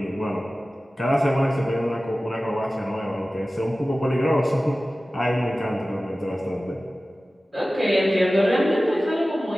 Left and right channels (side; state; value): both; normal; correlation 0.96